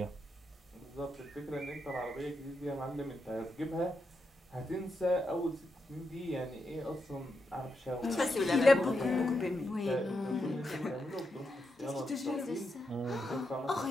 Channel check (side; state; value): both; normal; correlation 0.84